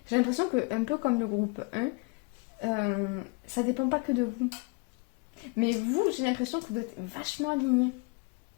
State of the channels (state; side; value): quieter; right; 30.5 dB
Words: J'ai l'impression que, un peu comme le groupe 1, ça dépend pas que de vous. Mais vous, j'ai l'impression que vous êtes vachement alignés.